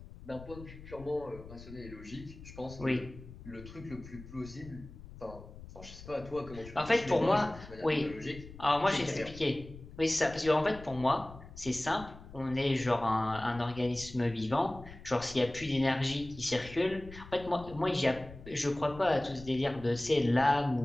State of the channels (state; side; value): noise; left; rumble, 16 dB below the sound